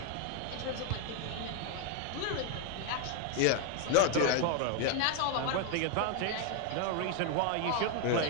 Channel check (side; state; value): both; different; correlation 0.00